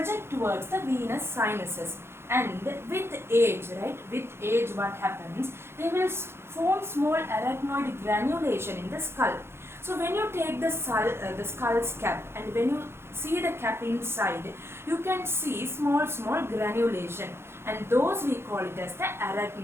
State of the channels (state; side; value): late; left; 0.12 ms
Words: towards the venous sinuses, and with age, right? With age, what happens? They will form small arachnoid granulation in the skull. So when you take the skull's cap, and when you see the cap inside, you can see small granulation, and those we call it as the